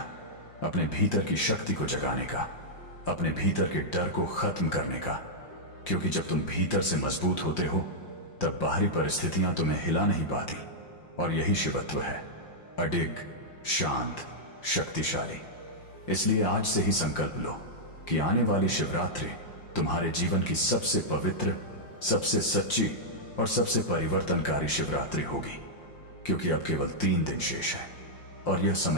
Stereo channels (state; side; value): late; right; 5.7 ms